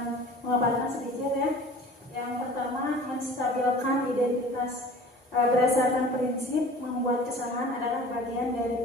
memaparkan sedikit ya. Yang pertama, menstabilkan identitas. Berdasarkan prinsip membuat kesalahan adalah bagian dari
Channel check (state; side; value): normal; both; correlation 0.44